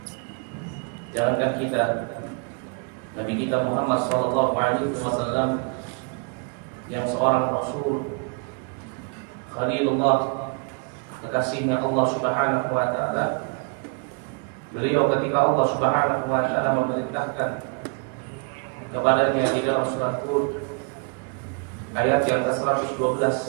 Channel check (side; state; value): left; quieter; 36.4 dB